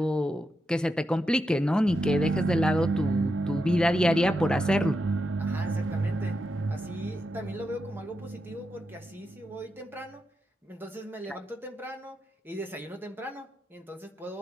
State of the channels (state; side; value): normal; both; correlation 0.86